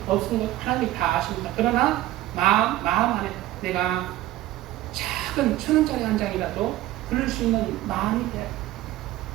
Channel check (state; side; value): quieter; left; 15.3 dB